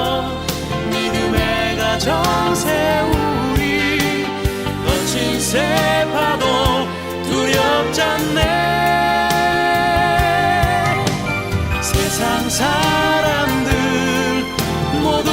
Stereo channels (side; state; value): both; identical; correlation 1.00